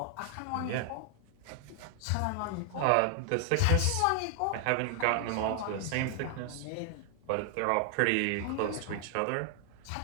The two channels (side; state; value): both; different; correlation 0.00